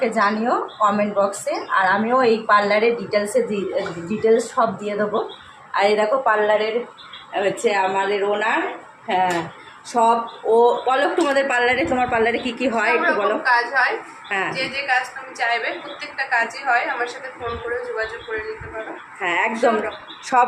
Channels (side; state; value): both; identical; correlation 1.00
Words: জানিও কমেন্ট বক্সে, আর আমিও এই পার্লারের ডিটেলস সব দিয়ে দেবো। আর এই দেখো পার্লারের হচ্ছে আমাদের ওনার। হ্যাঁ, সব ও বলো তোমার পার্লারে কি কি হয় একটু বলো। কাজ হয়, হ্যাঁ, যে কাজ তুমি চাইবে প্রত্যেকটা কাজই হয়। আমার সাথে ফোন করে যোগাযোগ করে নিতে পারো। হ্যাঁ একদম সব